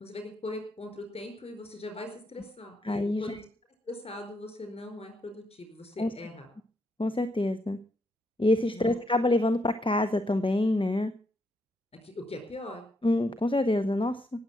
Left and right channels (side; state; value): both; normal; correlation 0.77